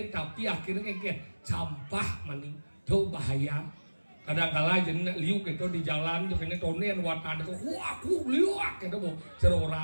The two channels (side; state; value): both; inverted; correlation -1.00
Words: tapi akhirnya kayak campah maning tuh bahaya kadang-kala jadi liuk itu di jalan juga ini tonen watan itu wah aku liuk itu mau